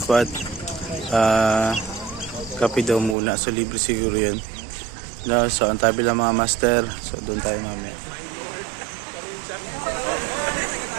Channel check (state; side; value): drops out; left; at 3.2 s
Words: Kape daw muna. So libre siguro yun. No, so ang tabi lang mga master. So doon tayo mamaya.